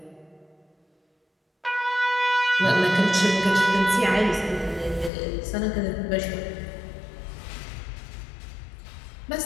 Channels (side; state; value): right; drops out; at 5.1 s